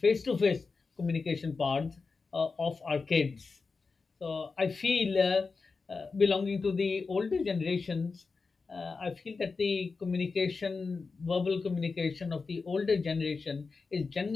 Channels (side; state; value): right; quieter; 4.4 dB